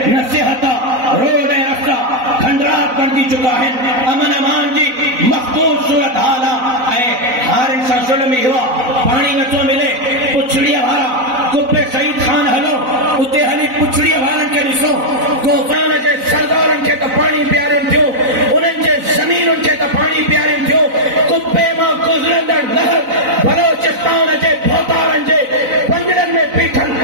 न सिहत आहे, रोड ऐं रस्ता खंडरात बणिजी चुका आहिनि। अमन अमान जी मखदूर सूरत हाल आहे। ऐं हारनि सां ज़ुल्म इहो आहे, पाणी नथो मिले। पुछड़ीअ वारा कुब्बे सईद खान हलो, उते हली पुछड़ीअ वारनि खे ॾिसो। गोफरान जे सरदारनि खे त पाणी पियारियो थियो, उन्हनि जे ज़मीनुनि खे त पाणी पियारियो थियो। कुब्बे मां गुज़रंदड़ नहर बलोचिस्तान जे भोतारनि जे पंजरनि में बीठल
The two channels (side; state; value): left; late; 4.0 ms